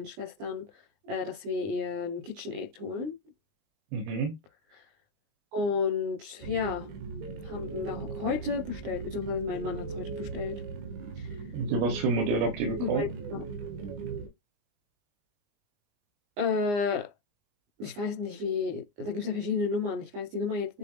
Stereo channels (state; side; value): late; left; 19 ms